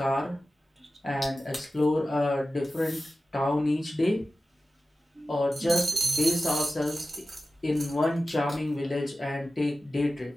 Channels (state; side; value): normal; both; correlation 0.94